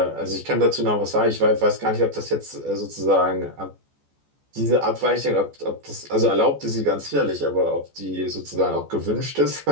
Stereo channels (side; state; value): left; late; 14 ms